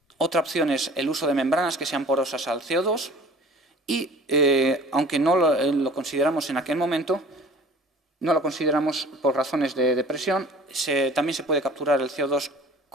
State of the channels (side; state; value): both; normal; correlation 0.47